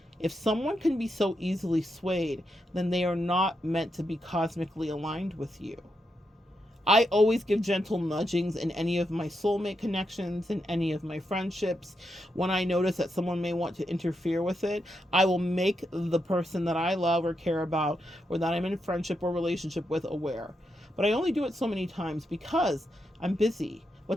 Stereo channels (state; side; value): normal; both; correlation 0.84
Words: If someone can be so easily swayed, then they are not meant to be cosmically aligned with you. I always give gentle nudgings in any of my soulmate connections, in any of my friendships. When I notice that someone may want to interfere with it, I will make the person that I love or care about, or that I'm in friendship or relationship with, aware. But I only do it so many times because I'm busy. What